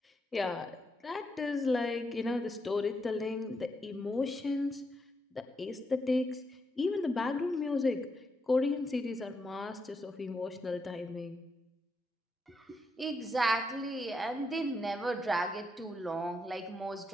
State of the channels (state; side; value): normal; both; correlation 0.81